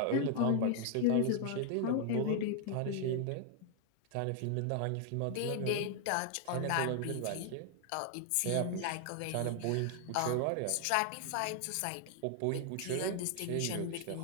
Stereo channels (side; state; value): both; different; correlation 0.00